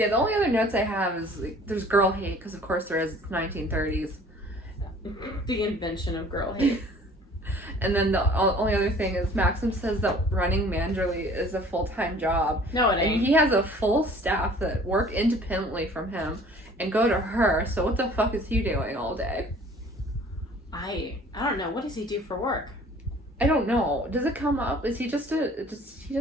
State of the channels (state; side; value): normal; both; correlation 0.51